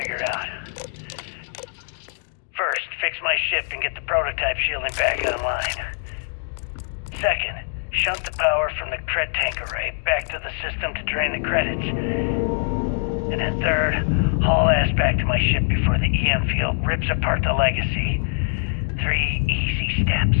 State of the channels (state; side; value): silent; right; digital silence